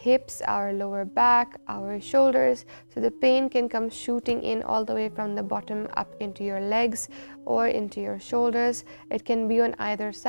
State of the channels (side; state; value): both; inverted; correlation -1.00